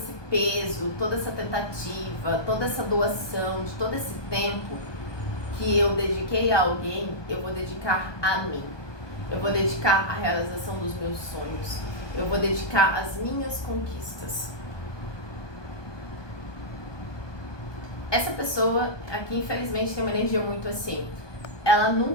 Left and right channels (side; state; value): right; late; 1.2 ms